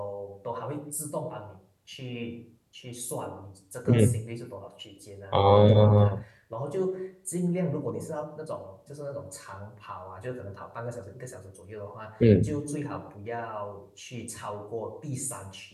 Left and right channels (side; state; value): both; identical; correlation 1.00